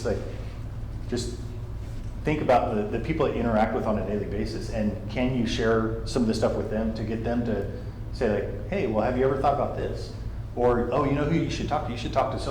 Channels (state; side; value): identical; both; correlation 1.00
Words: Like, just think about the people that you interact with on a daily basis, and can you share some of this stuff with them to get them to say, like, hey, well, have you ever thought about this? Or, oh, you know who you should talk to? You should talk to